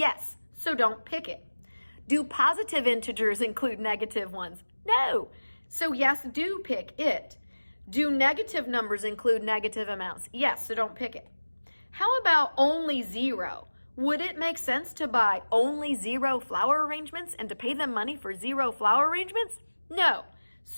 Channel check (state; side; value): inverted; both; correlation -1.00